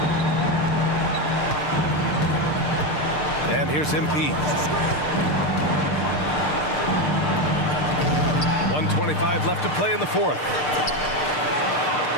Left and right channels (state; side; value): late; right; 6.7 ms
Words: And here's MP. 1:25 left to play in the fourth.